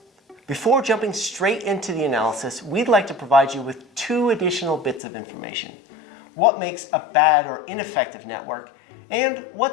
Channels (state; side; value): drops out; right; at 5.0 s